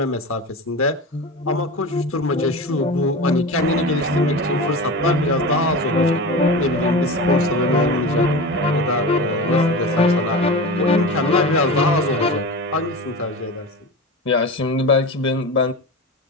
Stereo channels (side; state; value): both; normal; correlation 0.29